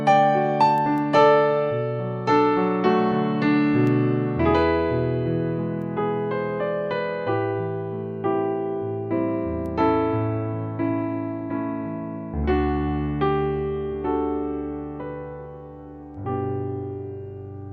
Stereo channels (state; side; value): identical; both; correlation 1.00